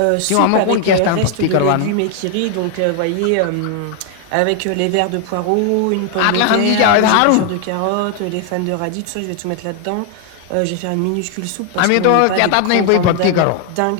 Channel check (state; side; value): different; both; correlation 0.00